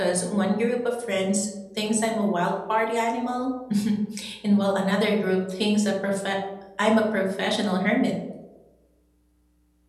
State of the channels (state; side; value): identical; both; correlation 1.00